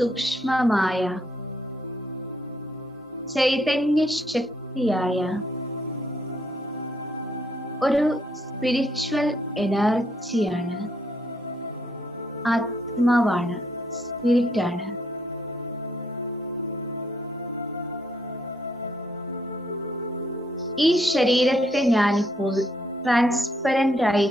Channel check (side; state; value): both; normal; correlation 0.71